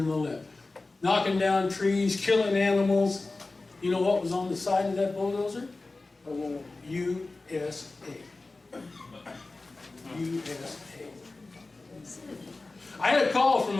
the left, knocking down trees, killing animals. You know what was on the side of that bulldozer? USA. USA. I had a call from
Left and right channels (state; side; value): quieter; right; 3.4 dB